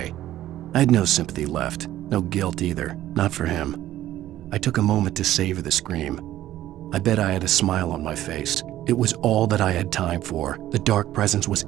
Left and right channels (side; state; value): left; quieter; 13.7 dB